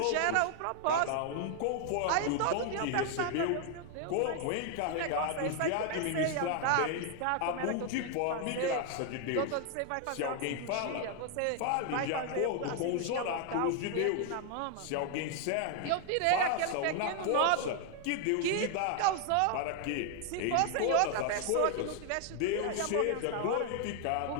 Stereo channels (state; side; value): different; both; correlation 0.00